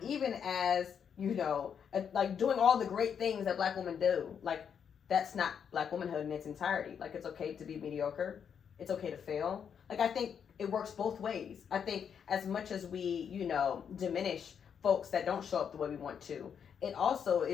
Even as, you know, like doing all the great things that Black women do. Like, that's not Black womanhood in its entirety. Like, it's okay to be mediocre. It's okay to fail. Like, I think it works both ways. I think as much as we, you know, diminish folks that don't show up the way we want to, it also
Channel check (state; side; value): quieter; right; 7.5 dB